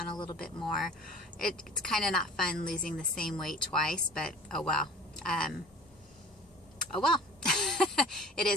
a little bit more. It's kind of not fun losing the same weight twice, but oh well. Oh well. It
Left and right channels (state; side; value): normal; both; correlation 0.43